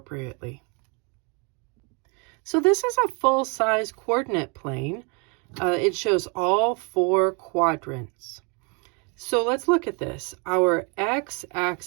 So this is a full-size coordinate plane. It shows all 4 quadrants. So let's look at this. Our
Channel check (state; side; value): quieter; left; 33.7 dB